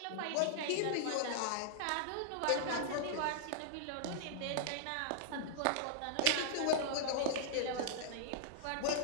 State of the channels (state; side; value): different; both; correlation -0.01